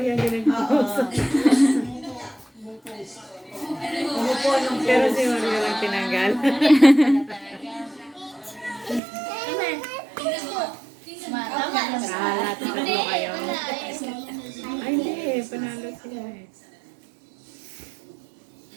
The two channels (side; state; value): left; drops out; at 9.0 s